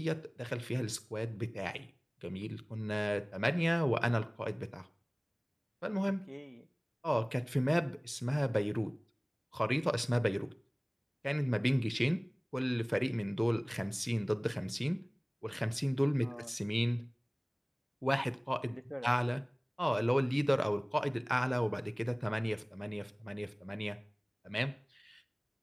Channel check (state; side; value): identical; both; correlation 1.00